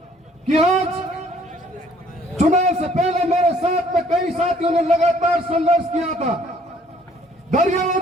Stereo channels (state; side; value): normal; both; correlation 0.60